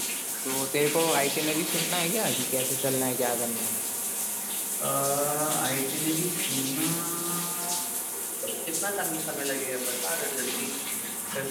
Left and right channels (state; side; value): identical; both; correlation 1.00